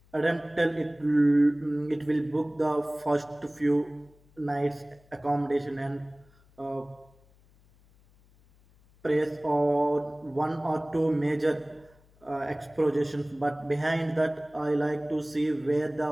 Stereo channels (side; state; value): left; noise; hum, 30 dB below the sound